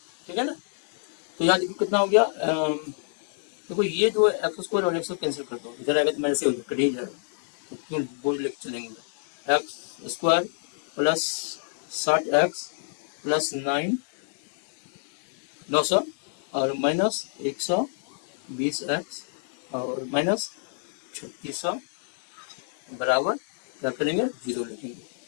ठीक है ना। तो यहाँ देखिए कितना हो गया, देखो ये जो है एक्स स्क्वायर और एक्स कैंसिल कर दो, इधर आएगा तो मेरे से हो कट ही जाएगा, तो क्यों बोल लेके चलेंगे, x square plus 60x plus 900 और माइनस 120x और माइनस 3600 बराबर क्या करेंगे 0 लिखेंगे,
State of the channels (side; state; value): right; silent; digital silence